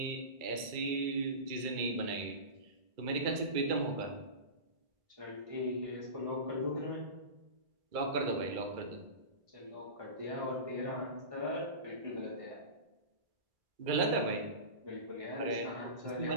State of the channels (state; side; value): late; left; 2.2 ms